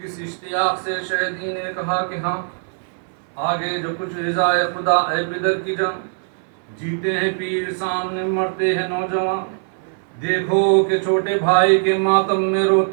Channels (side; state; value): left; silent; 65 dB below the other